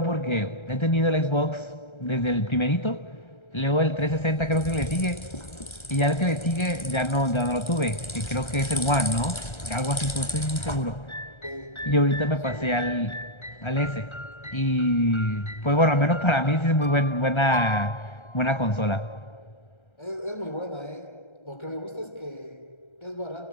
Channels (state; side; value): late; right; 1.3 ms